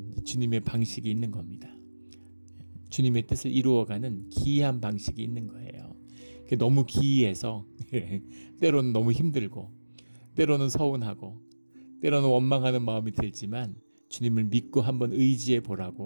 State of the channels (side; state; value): both; inverted; correlation -1.00